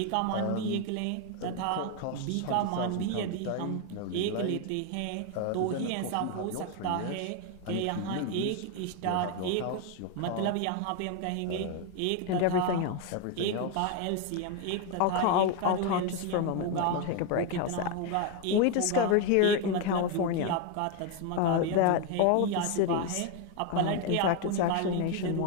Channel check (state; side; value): different; both; correlation 0.01